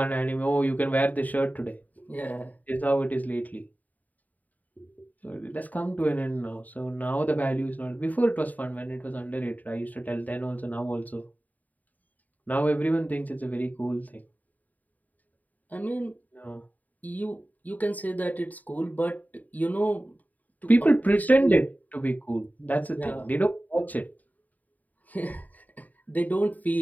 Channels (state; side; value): late; right; 0.078 ms